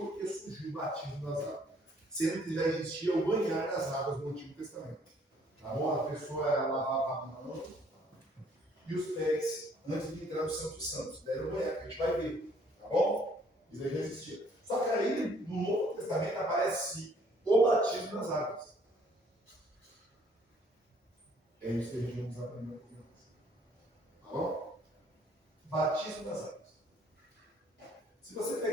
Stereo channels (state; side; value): normal; both; correlation 0.62